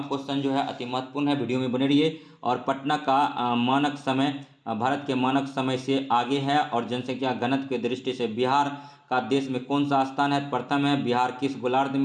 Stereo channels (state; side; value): identical; both; correlation 1.00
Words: क्वेश्चन जो है अति महत्वपूर्ण है, वीडियो में बने रहिए। और पटना का मानक समय भारत के मानक समय से आगे है। और जनसंख्या घनत्व की दृष्टि से बिहार का देश में कौन सा स्थान है? प्रथम है। बिहार किस गोलार्ध